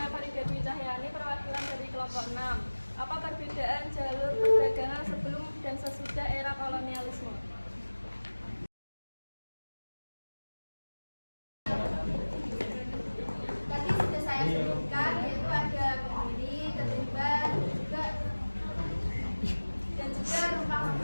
Farida Dwi Cahyani, perwakilan dari kelompok 6. Apa perbedaan jalur perdagangan sebelum dan sesudah era kolonialisme? Tadi sudah saya sebutkan, yaitu ada berdiri, ketumbar, dan juga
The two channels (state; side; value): inverted; both; correlation -1.00